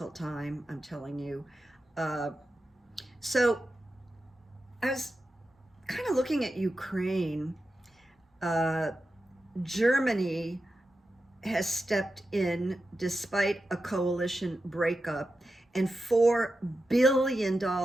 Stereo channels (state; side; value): normal; both; correlation 0.91